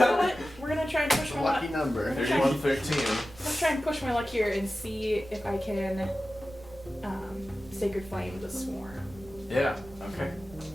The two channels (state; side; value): noise; right; rumble, 21 dB below the sound